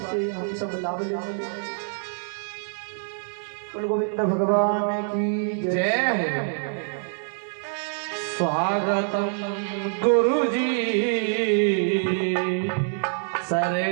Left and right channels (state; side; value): silent; left; digital silence